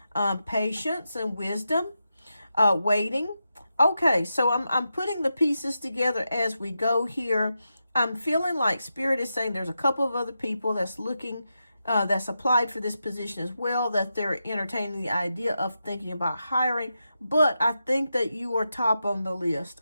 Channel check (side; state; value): both; inverted; correlation -0.88